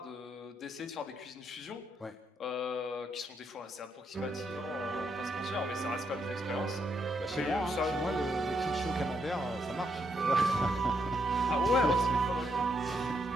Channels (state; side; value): normal; both; correlation 0.78